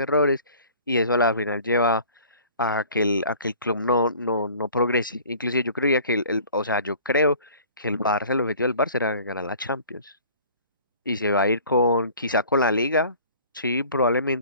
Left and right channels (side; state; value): both; inverted; correlation -0.49